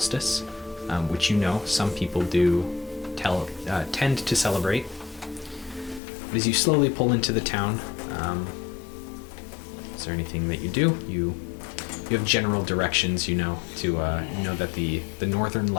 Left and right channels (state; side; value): drops out; right; at 6.0 s